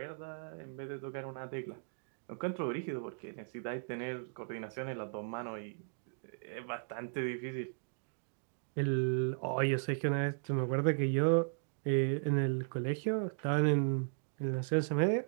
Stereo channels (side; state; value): left; silent; digital silence